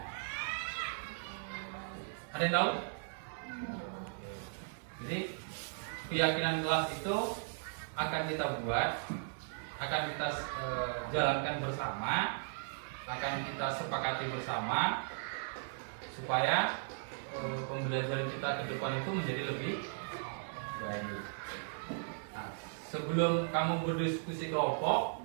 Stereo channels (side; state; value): left; silent; digital silence